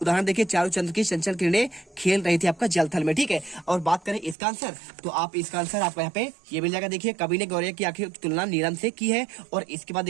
उदाहरण देखिए, चारू चंद्र की चंचल किरणें खेल रही थी आपका जलथल में। ठीक है, और बात करें इसका आंसर तो आप इसका आंसर आपको यहाँ पे ये मिल जाएगा। देखिए, कवि ने गौरव की आंखें की तुलना नीलम से की है। और इसके बाद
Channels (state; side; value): drops out; left; at 4.4 s